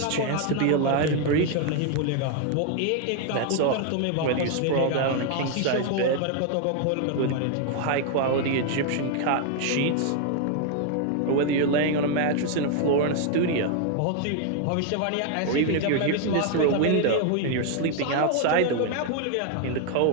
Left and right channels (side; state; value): both; different; correlation 0.00